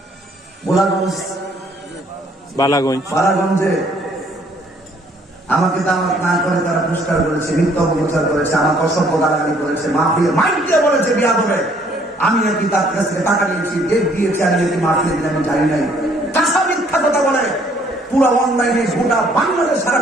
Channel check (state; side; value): normal; both; correlation 0.63